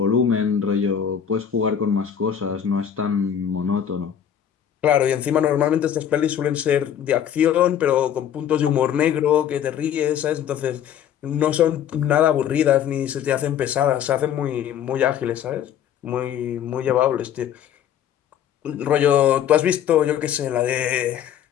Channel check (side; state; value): right; quieter; 9.3 dB